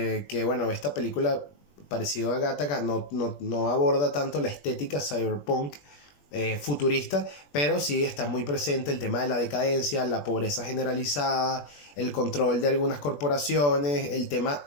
que bueno, esta película, parecido a Gattaca, no aborda tanto la estética cyberpunk futurista, pero sí está muy presente el tema de la decadencia, la pobreza generalizada, el control de algunas corporaciones, el tema,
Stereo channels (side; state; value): right; late; 21 ms